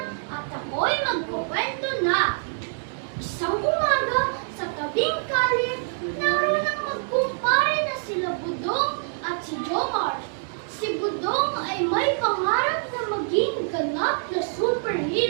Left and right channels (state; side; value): silent; left; digital silence